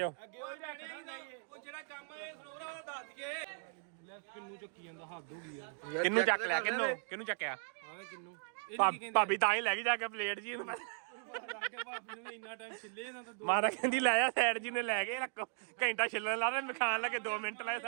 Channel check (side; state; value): left; silent; 53 dB below the other